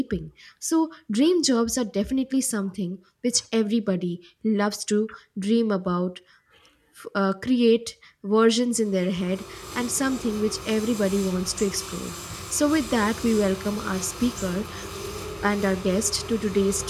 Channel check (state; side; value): identical; both; correlation 1.00